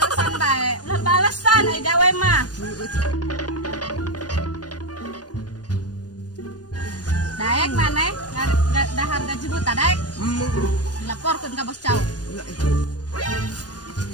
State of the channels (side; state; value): right; late; 0.69 ms